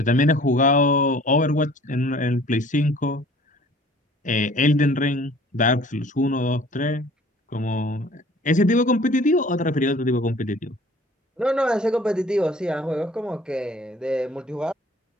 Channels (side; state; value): both; normal; correlation 0.51